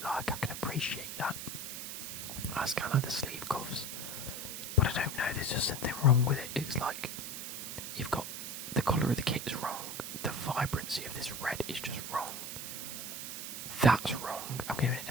like. I can appreciate that. That's kind of the sleeve cuffs. But I don't know. There's just something wrong with it. It's like you've got the colour of the kit is wrong. The vibrancy of this red is just wrong. That's wrong. I'm giving it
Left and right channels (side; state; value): right; noise; hiss, 6 dB below the sound